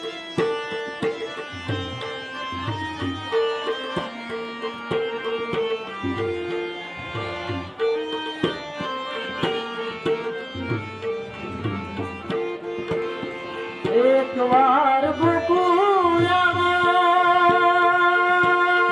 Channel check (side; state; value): both; identical; correlation 1.00